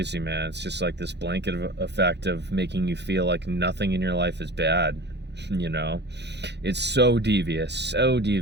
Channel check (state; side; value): late; left; 0.50 ms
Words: man. It's just like this blanket effect of making you feel like nothing in your life is bad. You know, it's so devious,